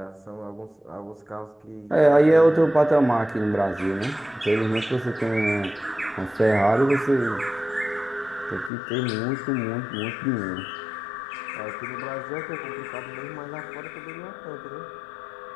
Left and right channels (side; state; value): right; drops out; at 8.7 s